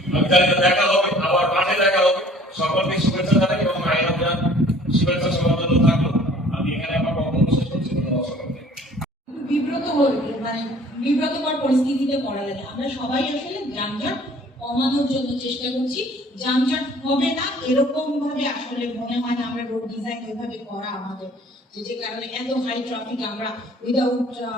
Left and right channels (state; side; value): normal; both; correlation 0.53